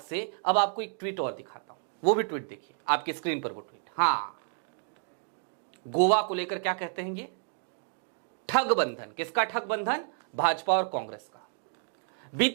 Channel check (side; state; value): left; silent; digital silence